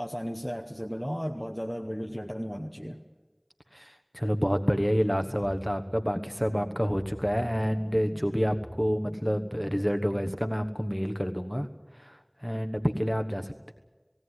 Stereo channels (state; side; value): identical; both; correlation 1.00